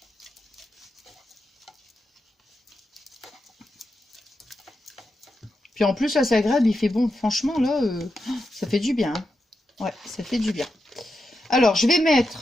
Puis en plus, là, c'est agréable, il fait bon. Franchement, là, ça fait du bien. Ouais, ça fait du bien. Alors, je vais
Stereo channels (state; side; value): normal; both; correlation 0.87